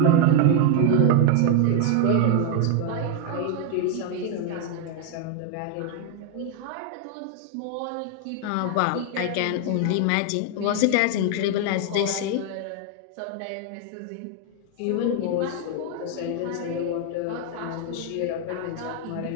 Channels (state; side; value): different; both; correlation 0.00